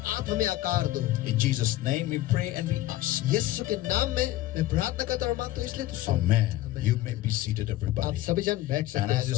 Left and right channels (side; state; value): right; quieter; 15.6 dB